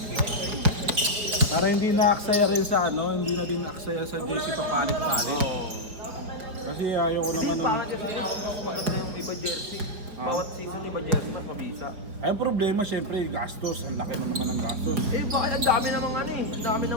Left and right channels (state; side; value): late; left; 4.7 ms